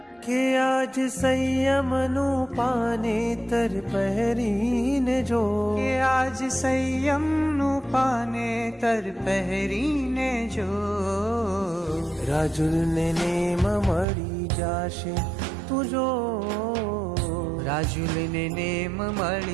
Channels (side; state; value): left; drops out; at 14.1 s